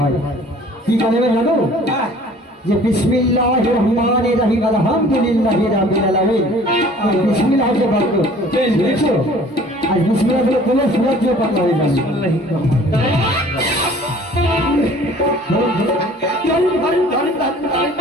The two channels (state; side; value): normal; both; correlation 0.51